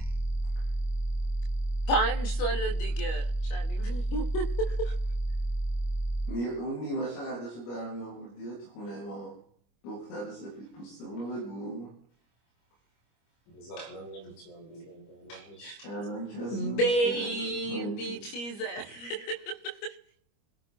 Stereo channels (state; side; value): late; right; 25 ms